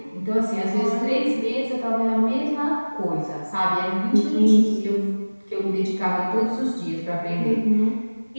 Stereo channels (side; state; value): both; inverted; correlation -1.00